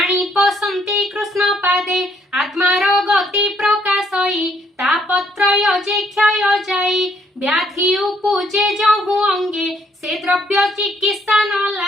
पसंती कृष्ण पादे आत्मार गति प्रकाशई तापत्रय जे क्षय जाई व्याधि उपजे जहु अंगे से द्रव्य चिकित्सा न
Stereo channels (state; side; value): normal; both; correlation 0.69